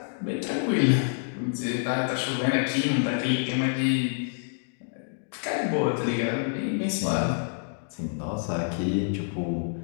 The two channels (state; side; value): silent; right; digital silence